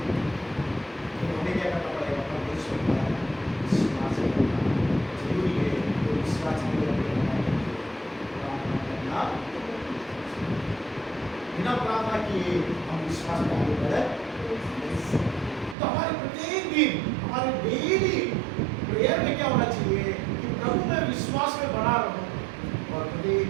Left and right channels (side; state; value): left; drops out; at 15.8 s